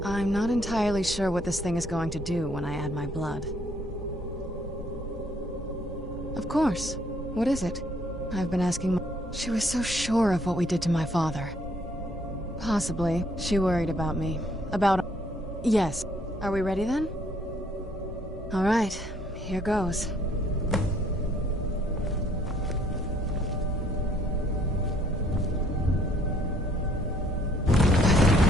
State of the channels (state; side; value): normal; both; correlation 0.65